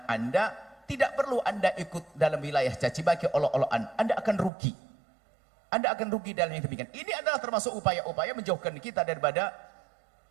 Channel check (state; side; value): drops out; left; at 4.5 s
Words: Anda. Tidak perlu Anda ikut dalam wilayah caci maki, olok-olokan. Anda akan rugi. Anda akan rugi dalam yang demikian. Ini adalah termasuk upaya-upaya menjauhkan kita daripada